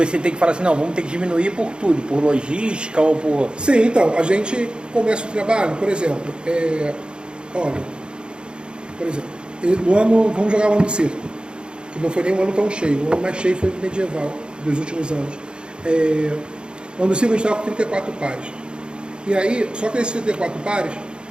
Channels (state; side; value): late; left; 0.051 ms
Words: ter que falar assim, não, vamos ter que diminuir por tudo, por logística ou por... Sim, então, a gente começa o trabalho, por exemplo, no ano, vamos jogar o ano do circo, que não foi nem um ano tão cheio, o ano mais cheio foi o medieval, dos últimos anos. No ano do circo a gente estava com 34 pares. E aí, só que nesses 34 pares,